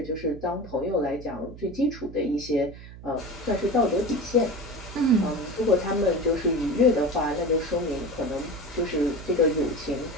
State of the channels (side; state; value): right; noise; hum, 15 dB below the sound